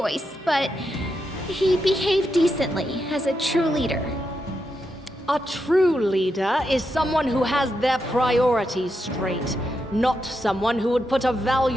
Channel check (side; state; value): both; normal; correlation 0.84